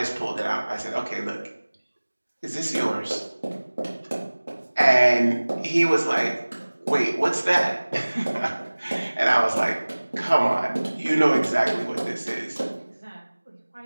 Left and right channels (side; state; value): both; inverted; correlation -1.00